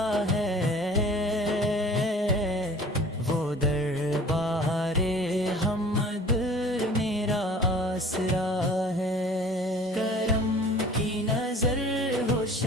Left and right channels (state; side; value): normal; both; correlation 0.47